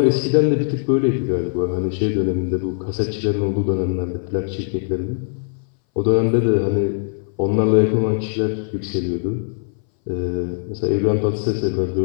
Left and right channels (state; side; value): silent; right; 61 dB below the other